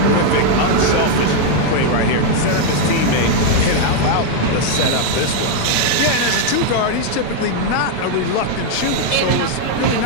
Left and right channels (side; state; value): both; different; correlation 0.00